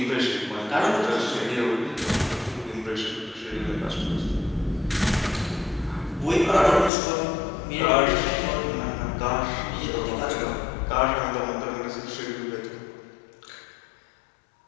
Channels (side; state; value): right; drops out; at 6.9 s